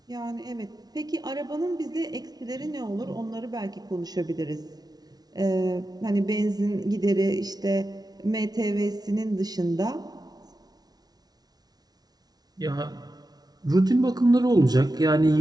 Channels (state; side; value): late; left; 0.19 ms